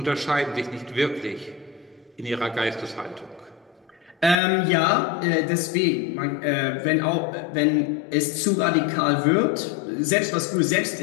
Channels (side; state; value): right; drops out; at 4.4 s